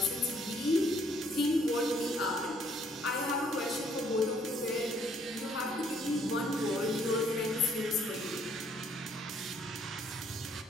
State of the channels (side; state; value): both; normal; correlation 0.65